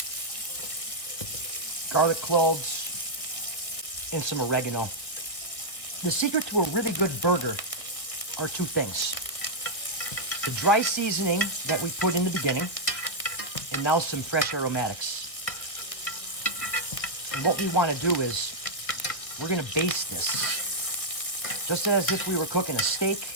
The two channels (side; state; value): right; late; 1.9 ms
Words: garlic cloves, and some oregano. The secret to a really good burger are 2 things. The dry seasoning that we put in the beginning, and now some fresh aromatics. And what we want to do is we're going to baste this just as if we were cooking a steak,